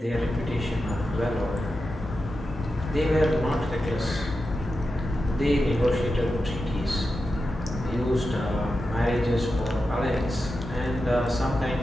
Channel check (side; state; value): both; normal; correlation 0.90